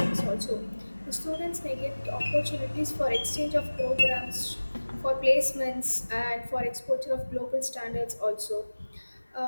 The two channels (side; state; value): both; inverted; correlation -1.00